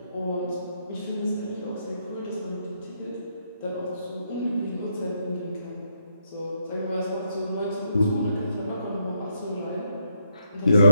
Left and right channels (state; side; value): inverted; both; correlation -0.76